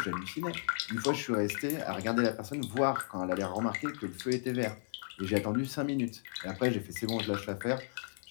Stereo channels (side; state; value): right; silent; digital silence